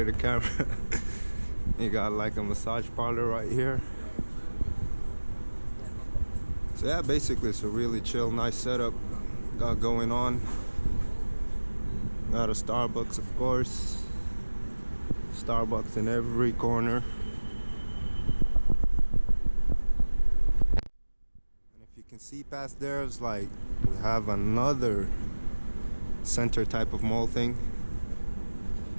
the camera. You got like a massage parlor right here. So yeah, basically it's a really chill, nice setup got going on. Got a Starbucks, of course. Starbucks in every corner. And if you can see past there, it's like we have another center type of mall thing.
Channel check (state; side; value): inverted; both; correlation -1.00